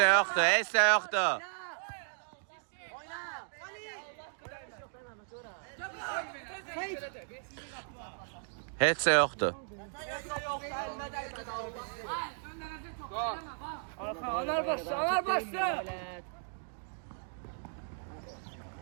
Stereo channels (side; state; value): left; silent; digital silence